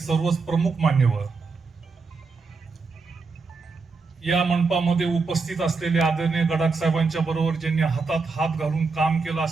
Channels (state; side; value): quieter; left; 4.3 dB